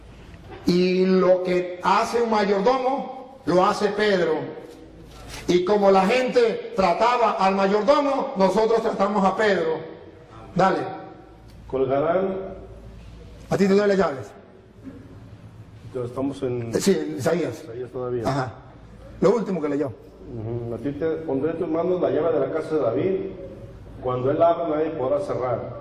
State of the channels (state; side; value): identical; both; correlation 1.00